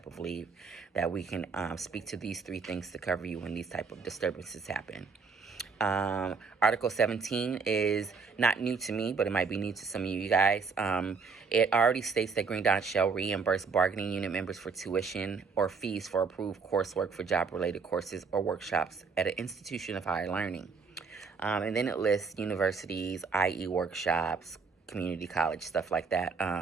of leave, that we can speak to these 3 things to cover you when these type of disturbances happen. Article 17 is not new to me, but it might be new to some of you guys. It already states that Green Dot shall reimburse bargaining unit members for tuition or fees for approved coursework for job-related courses or workshops at an institution of higher learning. And then it lists universities, i.e. workshops, community college, stuff like that.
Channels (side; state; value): left; quieter; 5.0 dB